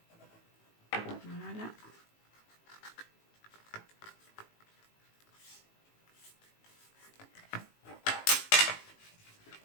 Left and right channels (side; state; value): right; late; 18 ms